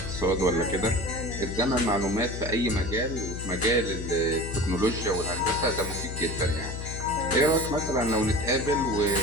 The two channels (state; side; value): noise; left; hum, 7 dB below the sound